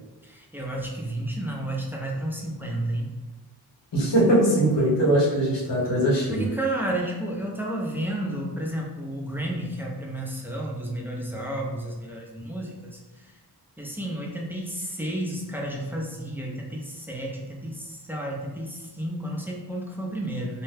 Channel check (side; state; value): both; normal; correlation 0.39